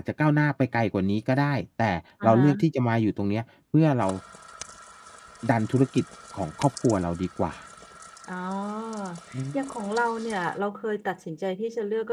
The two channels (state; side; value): identical; both; correlation 1.00